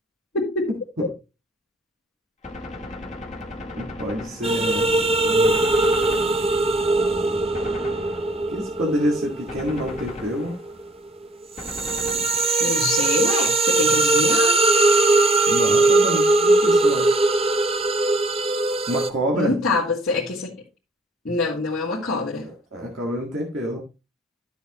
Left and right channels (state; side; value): normal; both; correlation 0.59